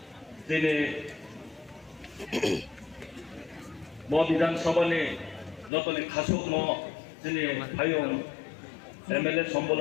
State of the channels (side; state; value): right; drops out; at 5.7 s